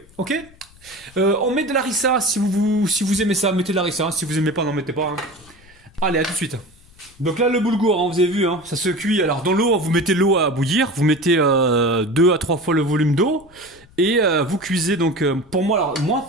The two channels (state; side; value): noise; left; rumble, 26 dB below the sound